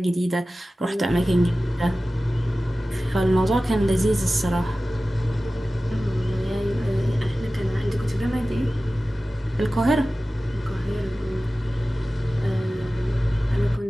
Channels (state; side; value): normal; both; correlation 0.96